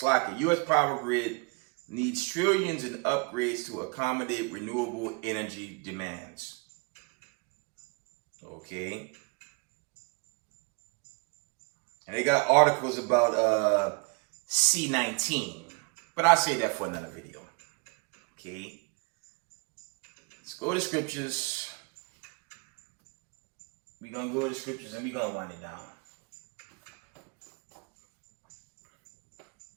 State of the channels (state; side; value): quieter; left; 31.4 dB